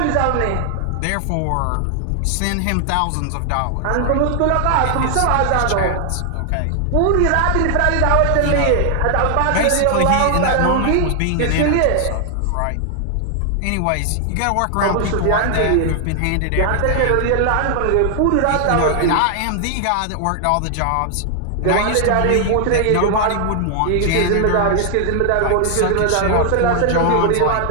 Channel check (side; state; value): both; different; correlation 0.00